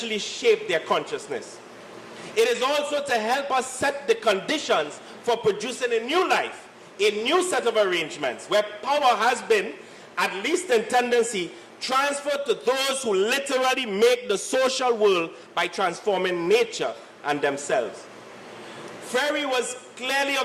shaped their consciousness. It is also to help us set the conditions for producing a new life, a new set of arrangements where power has been at least in tendency, transferred to those who literally make the social world by transforming nature and themselves. Freire was clearly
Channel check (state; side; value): identical; both; correlation 1.00